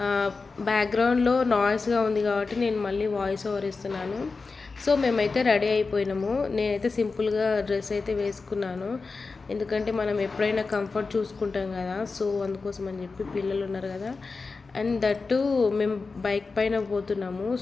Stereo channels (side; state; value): right; quieter; 4.2 dB